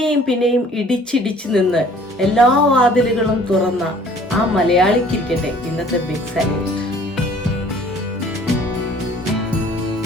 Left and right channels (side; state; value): both; normal; correlation 0.53